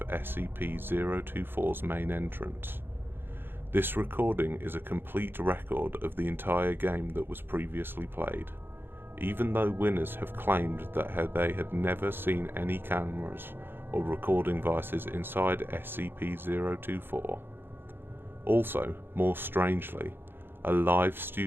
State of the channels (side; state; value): left; late; 0.10 ms